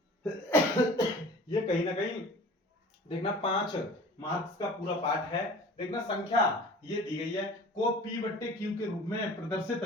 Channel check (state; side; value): normal; both; correlation 0.43